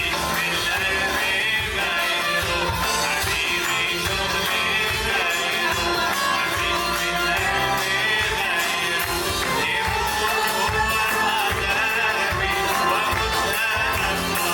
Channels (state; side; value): identical; both; correlation 1.00